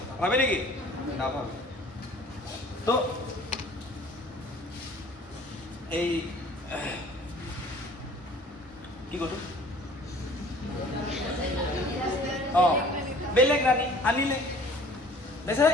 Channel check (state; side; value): normal; both; correlation 0.50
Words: ভাবে নেকি নাভাবে তো এই কি কৰো বেলেগ ৰাণী আনিলে বেচাৰা